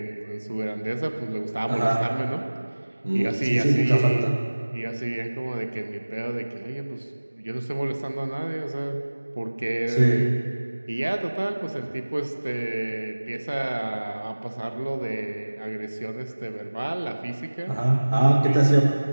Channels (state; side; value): inverted; both; correlation -1.00